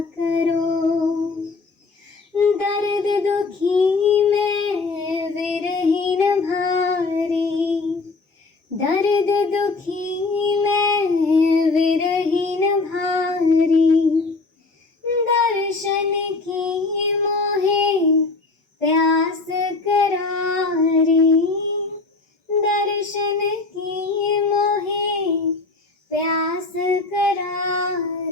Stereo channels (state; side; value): quieter; right; 3.8 dB